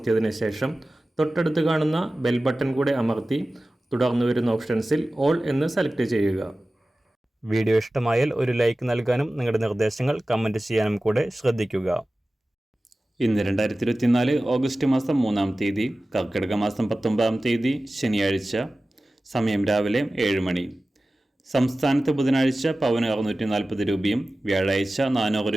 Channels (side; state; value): both; normal; correlation 0.96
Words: ശേഷം തൊട്ടടുത്ത് കാണുന്ന ബെൽ ബട്ടൺ കൂടെ അമർത്തി തുടർന്ന് വരുന്ന ഓപ്ഷൻസിൽ ഓൾ എന്ന് സെലക്ട് ചെയ്യുക. വീഡിയോ ഇഷ്ടമായാൽ ഒരു ലൈക്ക് നൽകാനും നിങ്ങളുടെ നിർദ്ദേശങ്ങൾ കമൻറ്റ് ചെയ്യാനും കൂടെ ശ്രദ്ധിക്കുക. ഇന്ന് 2024 ഓഗസ്റ്റ് മാസം 3-ാം തീയതി, കർക്കിടക മാസം 19-ാം തീയതി ശനിയാഴ്ച. സമയം രാവിലെ 7 മണി. സംസ്ഥാനത്ത് ബുധനാഴ്ച പവന് 640 രൂപയും വ്യാഴാഴ്ച 400